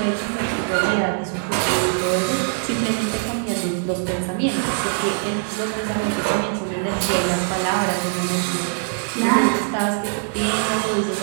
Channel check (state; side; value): silent; left; 58 dB below the other